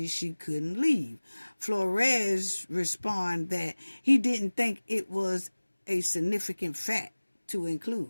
she couldn't leave. Flores responded that he didn't think it was a significant fact to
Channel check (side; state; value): both; inverted; correlation -1.00